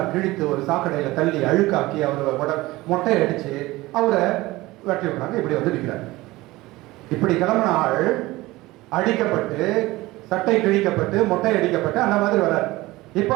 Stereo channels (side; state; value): left; quieter; 19.4 dB